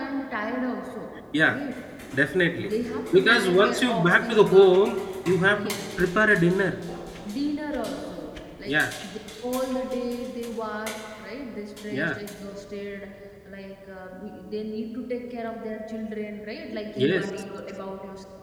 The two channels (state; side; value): identical; both; correlation 1.00